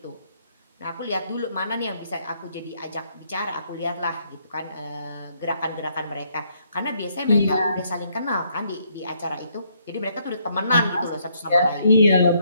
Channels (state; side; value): inverted; both; correlation -0.71